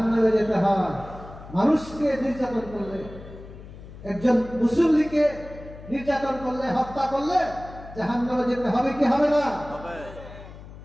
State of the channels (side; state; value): left; noise; hum, 16 dB below the sound